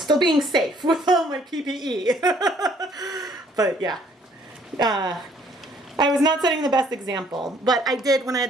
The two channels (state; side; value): normal; both; correlation 0.62